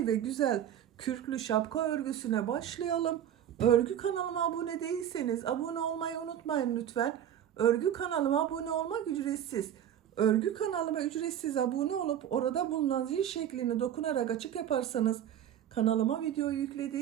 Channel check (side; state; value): left; quieter; 10.3 dB